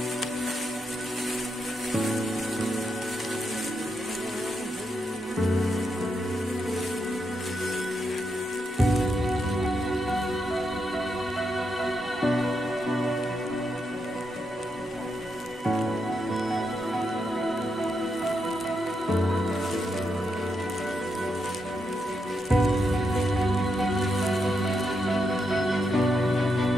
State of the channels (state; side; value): normal; both; correlation 0.82